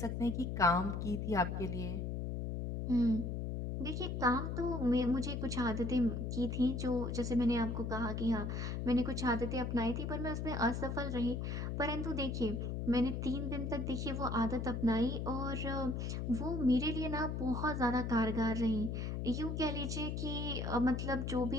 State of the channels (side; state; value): left; noise; hum, 2 dB below the sound